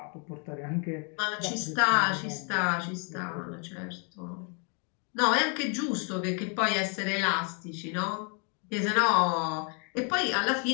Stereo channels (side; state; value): right; quieter; 38.6 dB